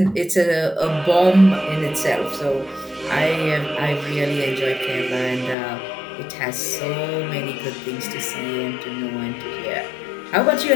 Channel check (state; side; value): drops out; right; at 5.6 s